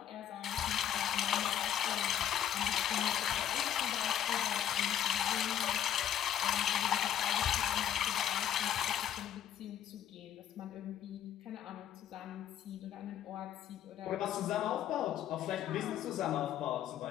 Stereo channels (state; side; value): quieter; right; 10.4 dB